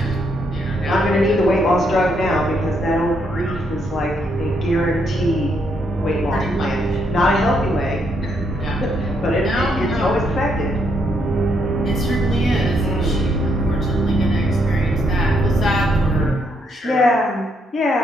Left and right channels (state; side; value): normal; both; correlation 0.75